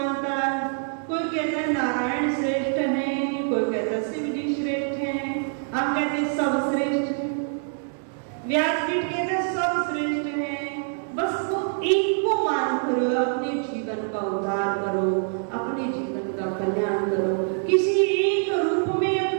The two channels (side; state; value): left; silent; digital silence